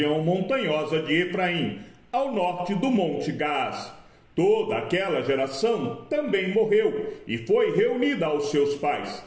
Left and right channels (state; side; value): identical; both; correlation 1.00